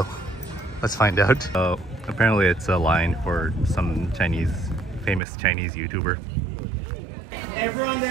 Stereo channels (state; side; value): drops out; left; at 5.2 s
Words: let's find out. Apparently it's a line for some famous Chinese YouTuber. Everyone